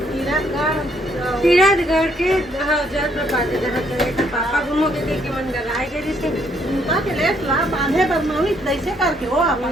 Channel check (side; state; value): both; normal; correlation 0.69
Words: तीरथगढ़ के जल प्रपात जहाँ चले पापा घूमो के देख के मन लगाए गए जैसे उनका के लेस ला बांधे बदमाशी कैसे करके हो